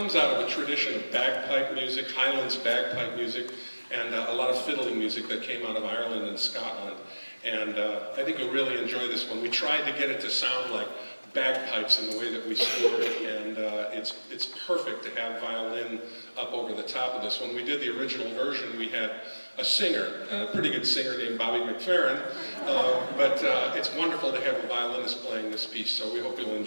out of a tradition of bagpipe music, Highlands bagpipe music, and a lot of fiddling music that came out of Ireland and Scotland, and I think you'll really enjoy this one. We tried to get it to sound like bagpipes in the way that we scored it, and it's perfect to have violin up over the top of this. When we did the original version, we had a singer, a pretty good singer named Bobby McFerrin, but it's wonderful to have a violinist playing this piece, so we hope you'll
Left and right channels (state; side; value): inverted; both; correlation -1.00